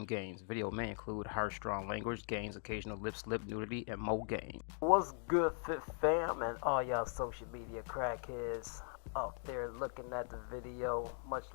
gains. Video may include harsh, strong language, gains, occasional lip slip, nudity, and more gains. What's good, Fit Fam, and all y'all social media crackheads out there looking at the video? Much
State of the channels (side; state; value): right; silent; 51 dB below the other